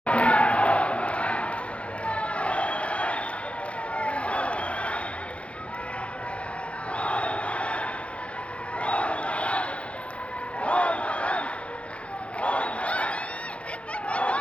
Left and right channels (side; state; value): right; late; 0.062 ms